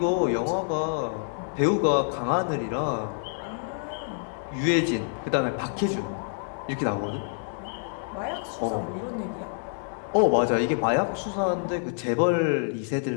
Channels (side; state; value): right; silent; digital silence